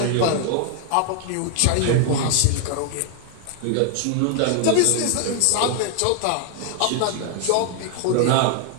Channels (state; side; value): different; both; correlation 0.00